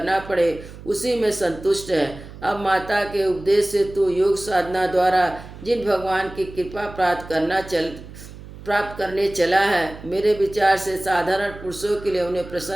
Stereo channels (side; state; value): right; noise; hum, 16 dB below the sound